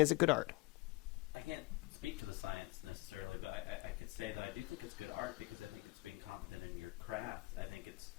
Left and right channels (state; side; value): quieter; right; 22.7 dB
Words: it good art? I can't speak to the science necessarily, but I could say that I do think it's good art because I think it's being competent in your craft. I think it's